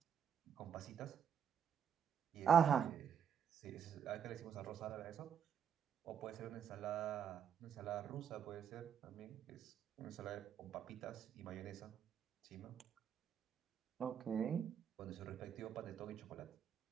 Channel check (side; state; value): left; quieter; 8.0 dB